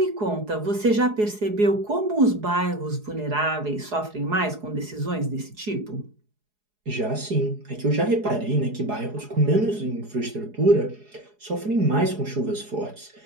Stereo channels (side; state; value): left; late; 4.8 ms